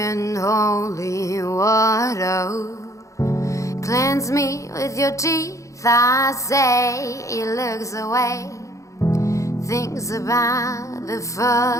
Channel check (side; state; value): right; late; 0.15 ms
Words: holy water. Cleanse me with your teeth, I say. He looks away, thinks about the